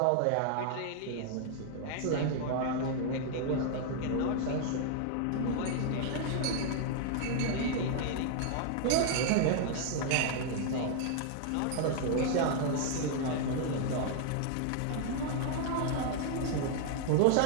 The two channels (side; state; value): both; different; correlation 0.00